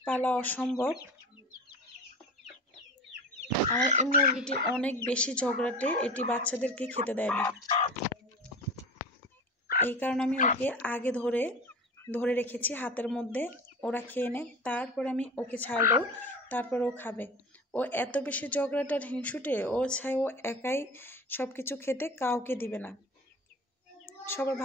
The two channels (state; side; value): normal; both; correlation 0.34